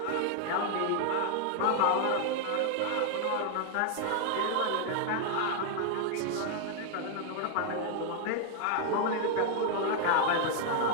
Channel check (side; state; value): both; different; correlation 0.00